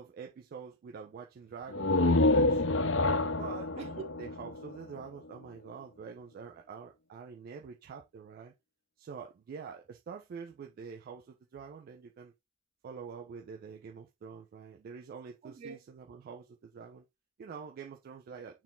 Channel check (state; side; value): normal; both; correlation -0.03